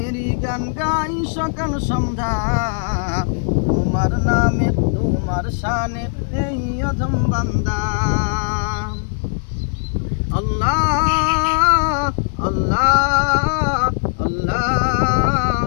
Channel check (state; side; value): silent; right; 67 dB below the other